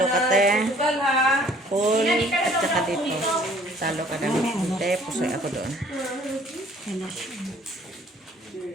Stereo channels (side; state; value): both; normal; correlation 0.56